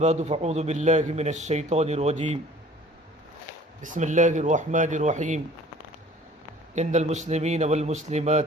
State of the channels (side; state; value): both; normal; correlation 0.50